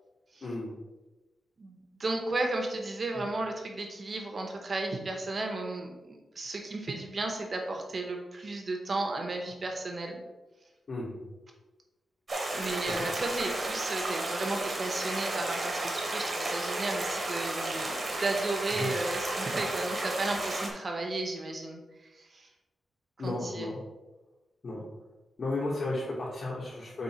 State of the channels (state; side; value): normal; both; correlation 0.88